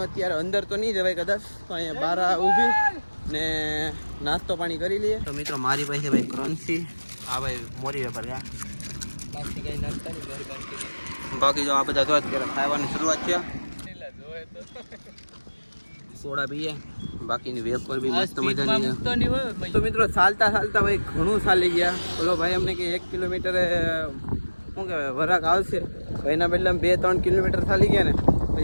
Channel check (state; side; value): inverted; both; correlation -1.00